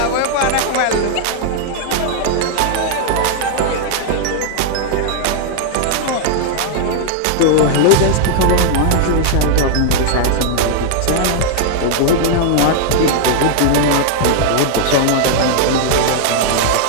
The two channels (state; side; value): different; both; correlation -0.01